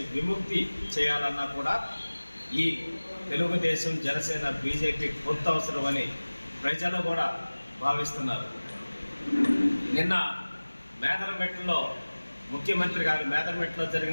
విముక్తి చేయాలన్నా కూడా ఈ తెలుగుదేశం, జనసేన, బీజేపీ పొత్తు అవసరమని ప్రజలు కూడా భావిస్తున్నారు. నిన్న మేదరమెట్టులో ముఖ్యమంత్రి గారు మేదరమెట్టులో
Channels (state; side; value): inverted; both; correlation -1.00